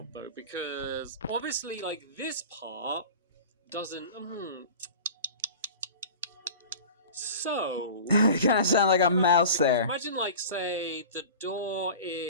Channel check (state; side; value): inverted; both; correlation -0.37